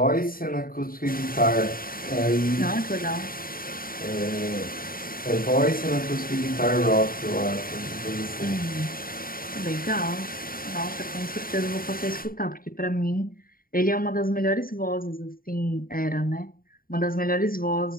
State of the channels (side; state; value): right; late; 0.42 ms